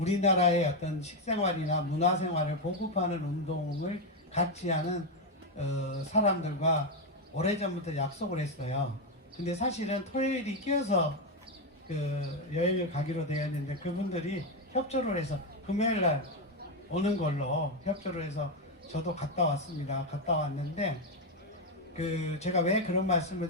어떤 식생활이나 문화생활을 보급하는 운동을 같이 하는 사람들과 오래전부터 약속을 했어요. 근데 사실은 토요일이 끼어서 여행을 가기로 되었는데 그분들이 협조를 해서 금요일날 오는 걸로 협조를 해서 저도 갔다 왔습니다. 갔다 왔는데 제가 왜 그런 말씀을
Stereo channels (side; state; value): both; normal; correlation 0.06